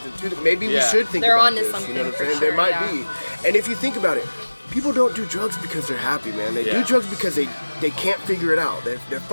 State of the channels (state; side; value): inverted; both; correlation -1.00